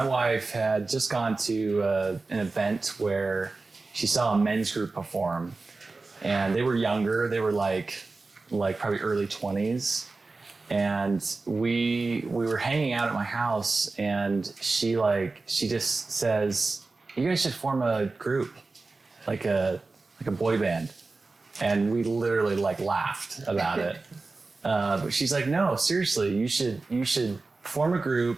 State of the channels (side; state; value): left; quieter; 3.7 dB